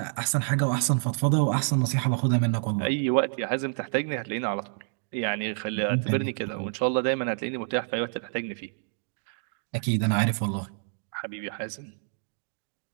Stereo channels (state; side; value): silent; left; digital silence